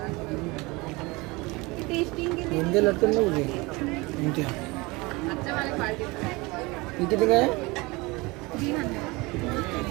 टेस्टिंग के लिए इंदे लटकन नहीं होगी इंदे अच्छा वाले क्वालिटी ये कितने का है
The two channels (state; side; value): quieter; left; 24.1 dB